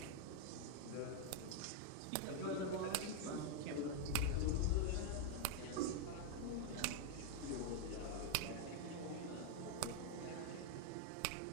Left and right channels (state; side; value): different; both; correlation 0.00